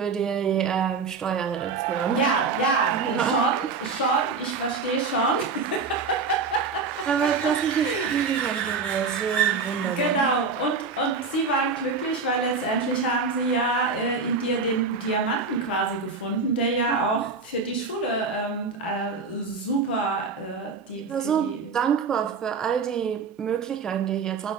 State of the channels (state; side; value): quieter; left; 4.7 dB